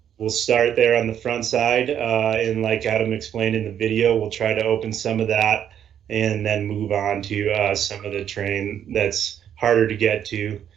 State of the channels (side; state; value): left; quieter; 9.5 dB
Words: we'll start there on the front side, and like Adam explained in the video, we'll try to open some of that and then move on to some of the terrain that's harder to get to